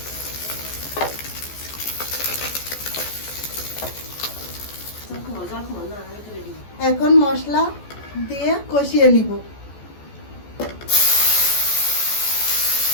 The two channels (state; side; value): late; right; 14 ms